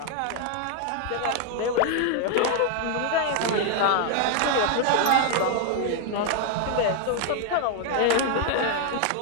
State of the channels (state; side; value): different; both; correlation 0.00